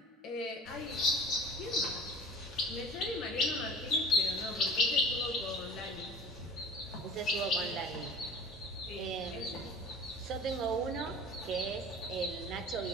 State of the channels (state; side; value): normal; both; correlation 0.42